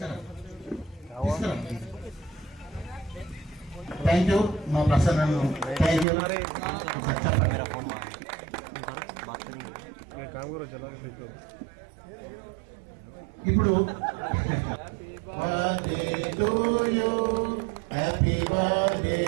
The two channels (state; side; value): drops out; left; at 6.1 s